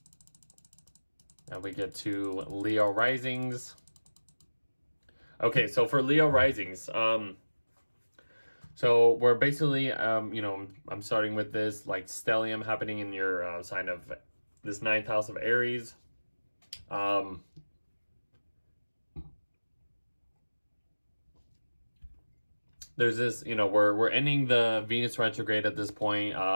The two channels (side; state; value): both; inverted; correlation -1.00